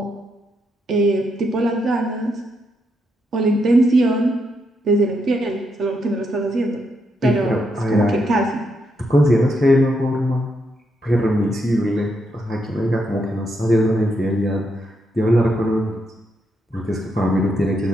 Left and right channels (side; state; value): both; normal; correlation 0.80